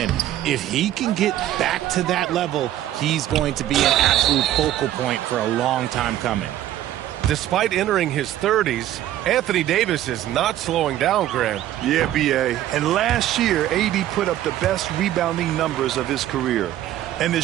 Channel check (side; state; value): left; quieter; 13.0 dB